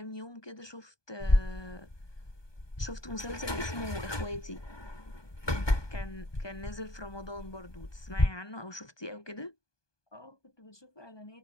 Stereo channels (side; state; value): right; late; 1.2 ms